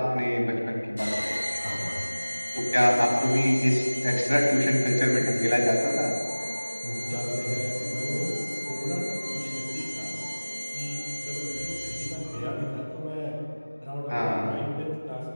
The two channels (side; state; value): both; inverted; correlation -1.00